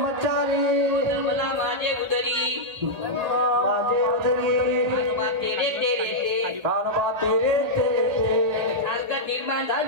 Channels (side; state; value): left; late; 1.8 ms